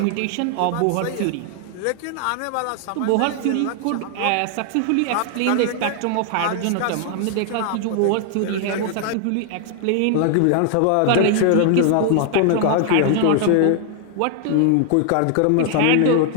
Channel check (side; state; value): both; different; correlation 0.00